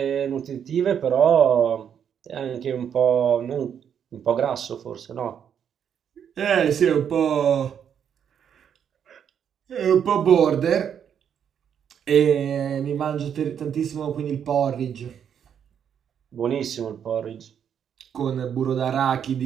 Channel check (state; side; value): quieter; left; 8.4 dB